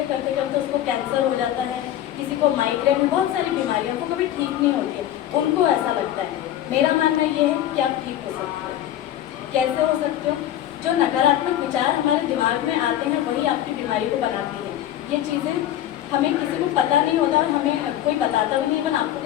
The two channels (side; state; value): right; quieter; 12.1 dB